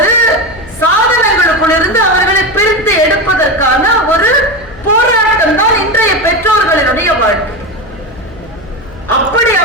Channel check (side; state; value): left; noise; hum, 21 dB below the sound